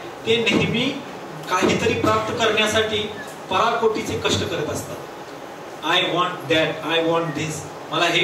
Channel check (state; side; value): identical; both; correlation 1.00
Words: ते नेहमी काहीतरी प्राप्त करण्यासाठी पराकोटीचे कष्ट करत असतात. I want that, I want this, मला हे